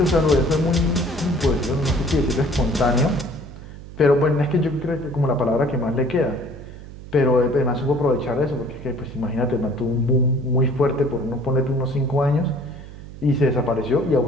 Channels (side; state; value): right; noise; hum, 15 dB below the sound